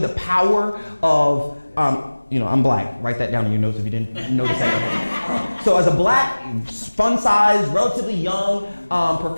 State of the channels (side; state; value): both; inverted; correlation -1.00